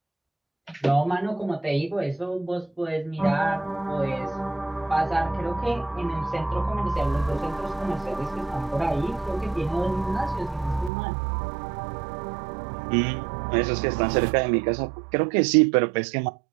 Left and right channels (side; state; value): left; drops out; at 10.9 s